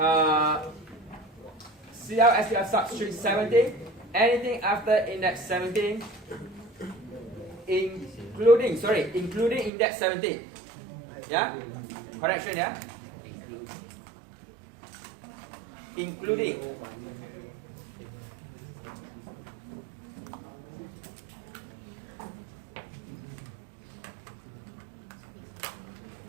SPL substring 17. Anything after index 17, including index 17. Yeah? Correction, yeah? Including.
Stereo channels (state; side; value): drops out; left; at 9.7 s